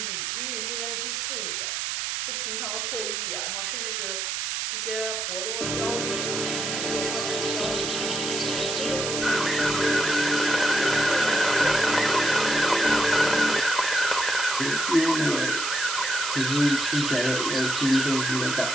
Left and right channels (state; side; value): noise; right; hiss, 2 dB below the sound